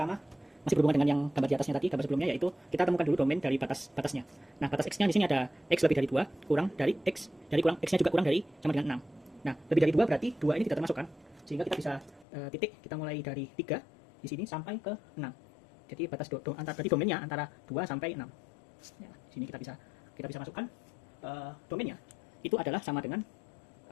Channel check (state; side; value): drops out; right; at 12.2 s